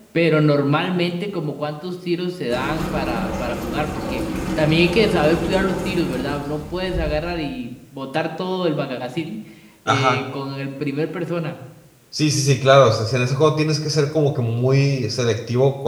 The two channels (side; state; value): both; identical; correlation 1.00